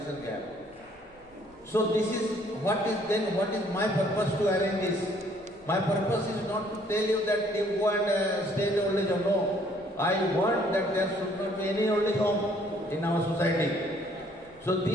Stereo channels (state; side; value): noise; right; rumble, 29 dB below the sound